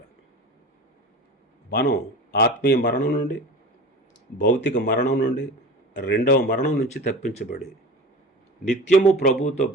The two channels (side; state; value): both; normal; correlation 0.35